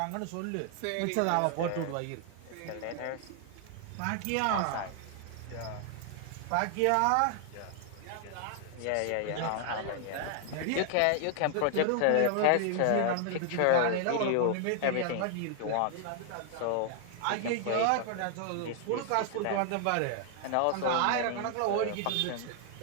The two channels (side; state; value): both; different; correlation 0.00